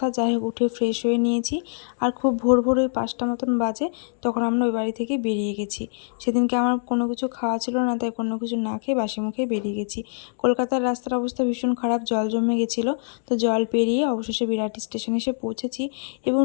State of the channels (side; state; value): right; silent; digital silence